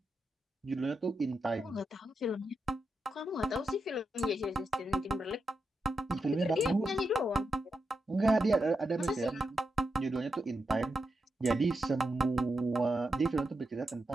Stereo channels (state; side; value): normal; both; correlation 0.86